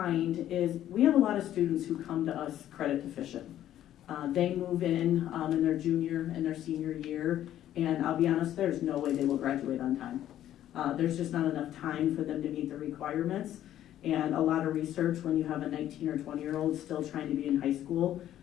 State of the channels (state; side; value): quieter; right; 12.0 dB